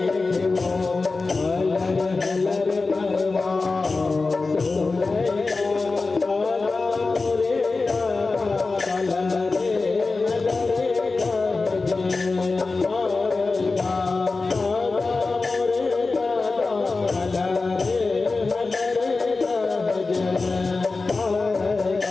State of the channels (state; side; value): quieter; right; 3.8 dB